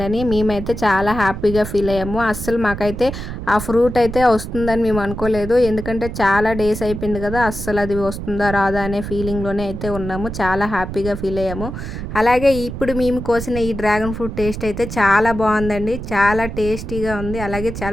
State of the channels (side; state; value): right; noise; rumble, 7 dB below the sound